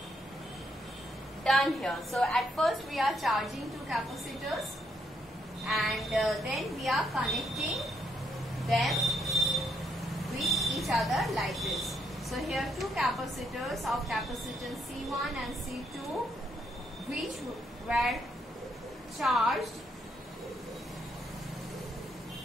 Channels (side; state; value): both; normal; correlation 0.74